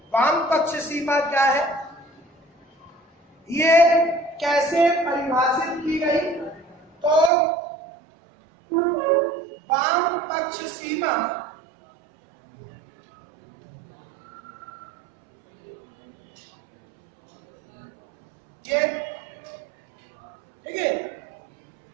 वाम पक्ष सीमा क्या है, ये कैसे परिभाषित की गई? तो वाम पक्ष सीमा ये ठीक है।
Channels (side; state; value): left; drops out; at 7.3 s